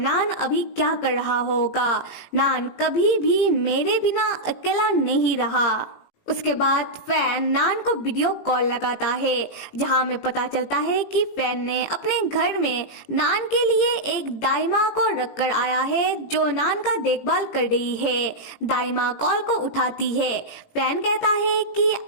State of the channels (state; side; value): late; right; 18 ms